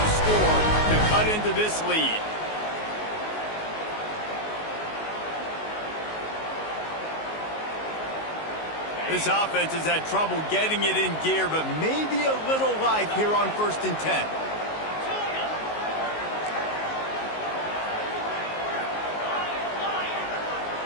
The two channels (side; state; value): right; late; 19 ms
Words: score to cut into this lead. This offense has had trouble getting it in gear, but maybe a little life here on 1st and 10.